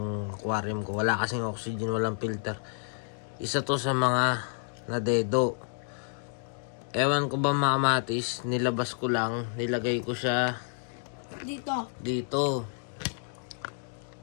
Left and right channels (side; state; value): right; silent; 58 dB below the other